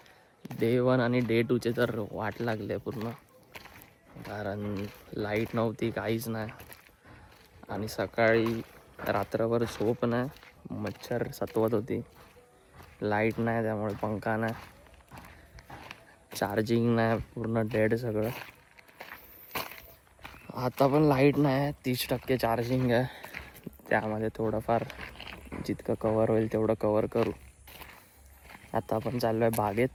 डे 1 आणि डे 2चे तर वाट लागले पूर्ण, कारण लाईट नव्हती, काहीच नाही. आणि सकाळी रात्रभर झोप नाही, मच्छर सतवत होती. लाईट नाही त्यामुळे पंखा नाही, चार्जिंग नाही, पूर्ण डेड सगळं. आता पण लाईट नाही, 30% चार्जिंग आहे. त्यामध्ये थोडंफार जितकं कवर होईल तेवढं कवर करू. आता आपण चाललो आहे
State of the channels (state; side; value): identical; both; correlation 1.00